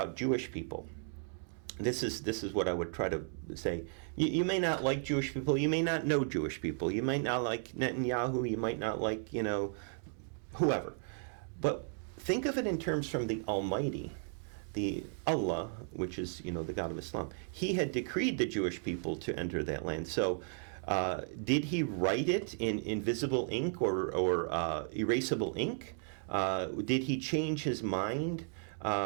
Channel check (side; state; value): left; silent; 54 dB below the other